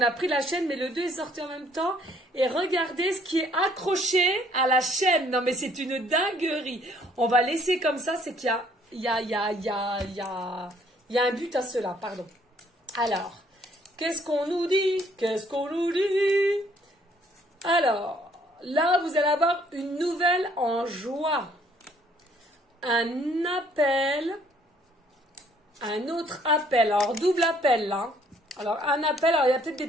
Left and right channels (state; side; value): normal; both; correlation 0.63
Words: a pris la chaîne, mais le 2 est sorti en même temps. Et regardez ce qui est accroché à la chaîne. Non, mais c'est une dinguerie. On va laisser comme ça, c'est qu'il y a un but à cela, pardon. Alors, qu'est-ce qu'on nous dit? Qu'est-ce qu'on nous dit? Alors, là, vous allez avoir une nouvelle en joie. Un appel. Un autre appel, alors double appel là. Alors un appel, alors il y a peut-être des